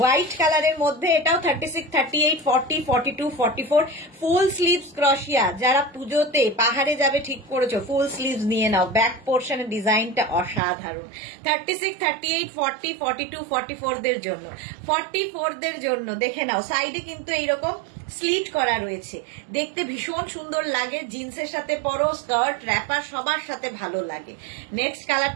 কালারের মধ্যে এটাও 36, 38, 40, 42, 44 ফুল স্লিভস ক্রোশিয়া। যারা পুজোতে পাহাড়ে যাবে ঠিক করেছো, ফুল স্লিভস নিয়ে নাও। ব্যাক পোর্শনের ডিজাইনটা অসাধারণ। 36, 38, 40, 42, 44 দের জন্য। 44 দের জন্য দেখে নাও, সাইডে কিন্তু এইরকম স্লিট করা রয়েছে, দেখতে ভীষণ সুন্দর লাগে। জিন্সের সাথে পরো, স্কার্ট, র্যাপার সবার সাথে ভালো লাগে। নেক্সট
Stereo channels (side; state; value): left; drops out; at 10.6 s